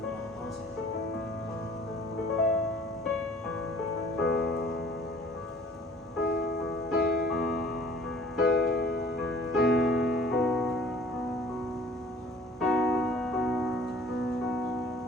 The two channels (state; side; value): normal; both; correlation 0.52